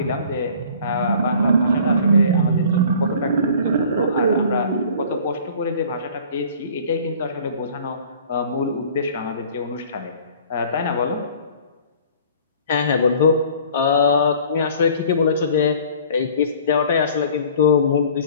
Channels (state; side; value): inverted; both; correlation -0.50